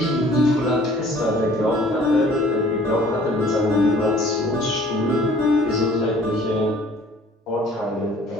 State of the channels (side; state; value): both; normal; correlation 0.53